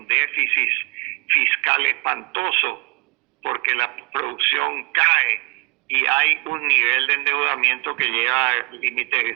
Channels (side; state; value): left; quieter; 30.3 dB